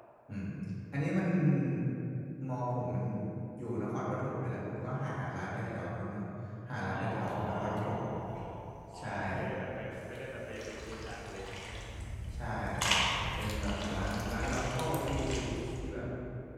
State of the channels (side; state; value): both; identical; correlation 1.00